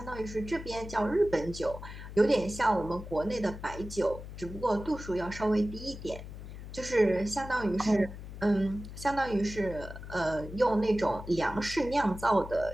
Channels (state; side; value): noise; left; hum, 11 dB below the sound